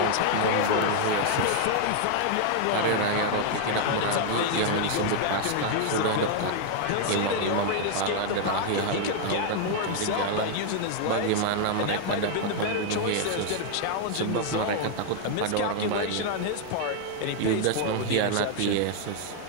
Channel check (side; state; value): both; different; correlation 0.00